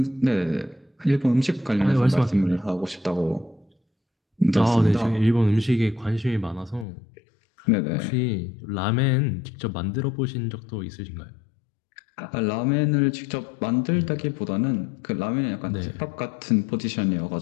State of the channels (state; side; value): drops out; right; at 6.9 s